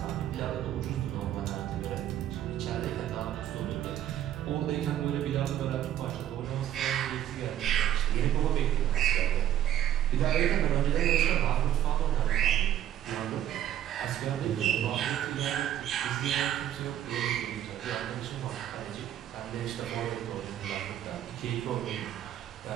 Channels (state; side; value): quieter; left; 11.4 dB